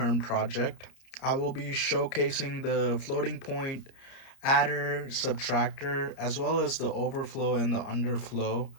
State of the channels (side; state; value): right; late; 30 ms